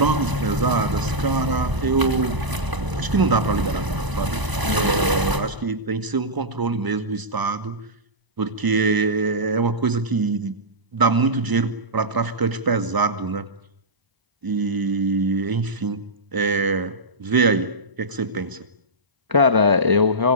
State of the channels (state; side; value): late; left; 1.0 ms